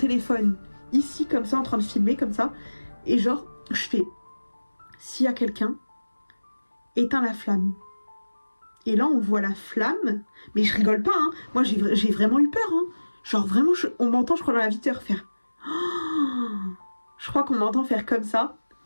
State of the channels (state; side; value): inverted; both; correlation -1.00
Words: ici comme ça en train de filmer comme ça. Et genre je fais, s'il y a quelqu'un, éteins la flamme. Et là on voit la flamme, mais je rigole pas hein. Moi j'ai vraiment eu peur hein. Genre vraiment on m'entend je crois dans la vitre faire. Oh, je crois qu'on m'entend faire comme ça.